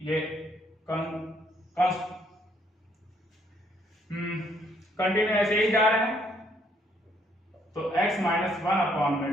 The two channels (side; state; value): both; normal; correlation 0.68